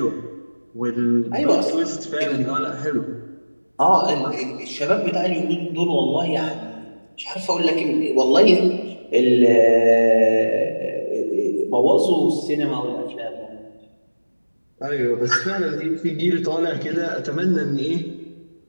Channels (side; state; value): both; inverted; correlation -1.00